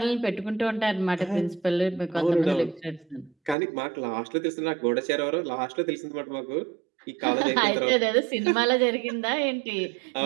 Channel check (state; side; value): drops out; left; at 3.6 s